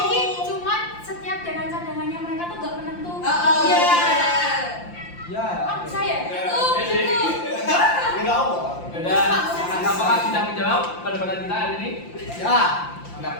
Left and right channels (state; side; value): late; right; 5.8 ms